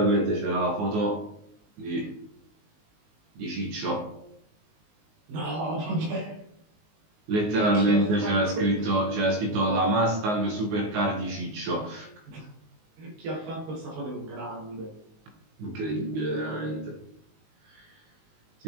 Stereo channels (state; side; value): late; left; 19 ms